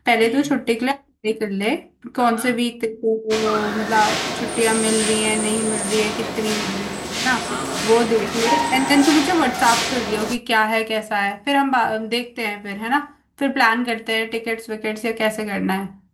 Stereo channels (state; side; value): identical; both; correlation 1.00